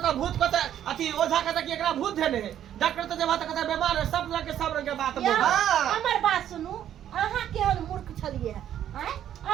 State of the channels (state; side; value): quieter; left; 10.7 dB